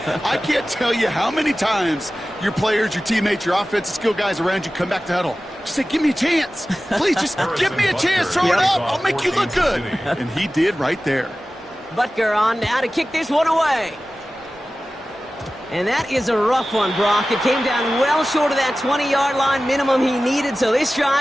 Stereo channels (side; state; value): both; normal; correlation 0.96